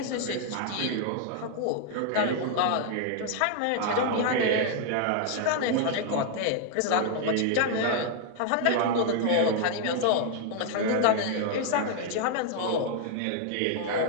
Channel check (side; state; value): both; different; correlation 0.00